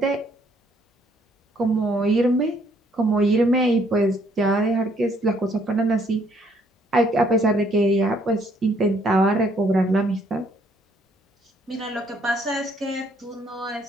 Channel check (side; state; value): both; normal; correlation 0.66